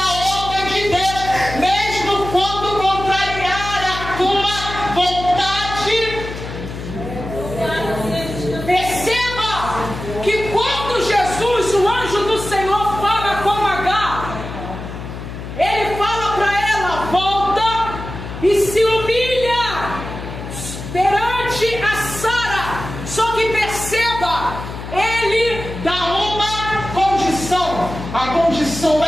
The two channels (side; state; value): left; noise; hum, 9 dB below the sound